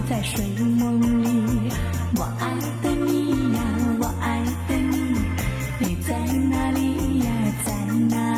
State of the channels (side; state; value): both; identical; correlation 1.00